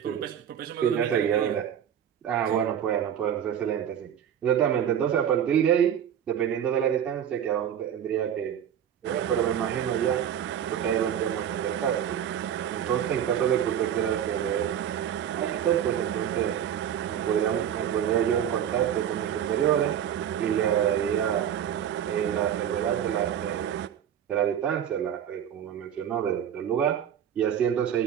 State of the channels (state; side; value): quieter; left; 9.5 dB